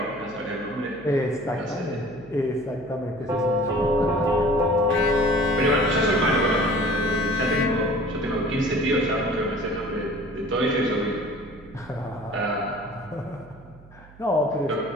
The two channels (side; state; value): right; noise; hum, 23 dB below the sound